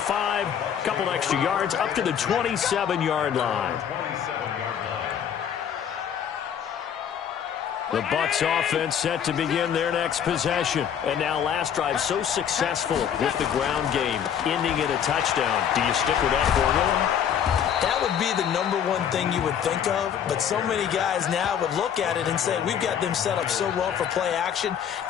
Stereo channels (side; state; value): right; quieter; 8.6 dB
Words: a couple extra yards, up to the 27-yard line. The Bucs offense set to begin their next possession. And now last drive so successful with the ground game, ending in a touchdown. Do you stick with that formula? That would be the #1 thing you would think of, but so many guys now would look at it and say, we've got them set up so well for play action.